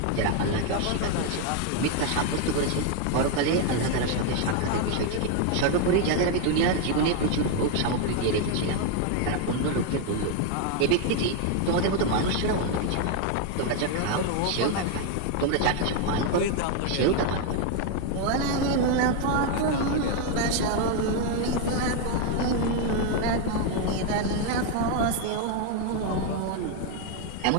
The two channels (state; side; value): different; both; correlation 0.01